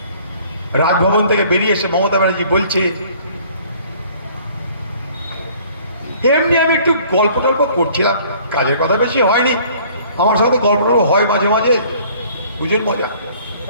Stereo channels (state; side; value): inverted; both; correlation -0.55